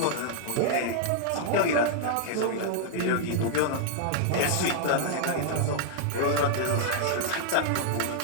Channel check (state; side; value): different; both; correlation -0.01